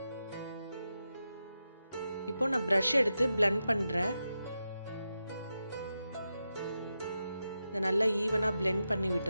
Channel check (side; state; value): both; inverted; correlation -0.89